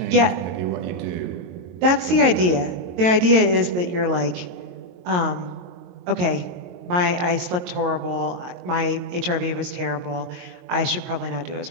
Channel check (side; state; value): left; late; 22 ms